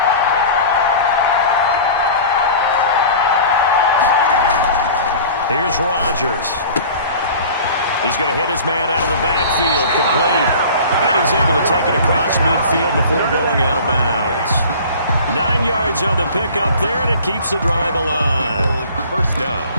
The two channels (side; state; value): both; inverted; correlation -0.42